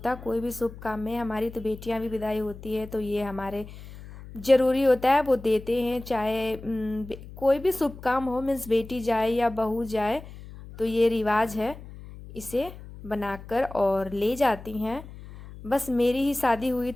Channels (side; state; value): left; noise; hum, 15 dB below the sound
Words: है, कोई भी शुभ काम में। हमारी तो बेटियाँ भी विदाई होती है, तो ये हमारे ज़रूरी होता है, वो देते हैं। चाहे कोई भी शुभ काम हो, मीन्स बेटी जाए या बहू जाए, तो ये रिवाज है, इसे बनाकर और ले जाती हैं बस मेरी ही शादी हुई